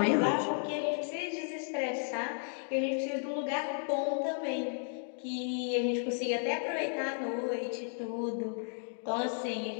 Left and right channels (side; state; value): right; silent; 55 dB below the other